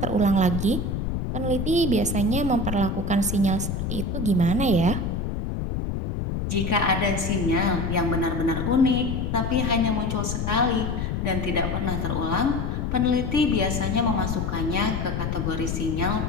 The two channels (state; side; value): noise; left; rumble, 2 dB below the sound